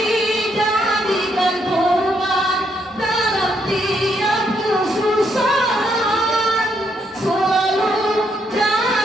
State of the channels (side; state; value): both; normal; correlation 0.75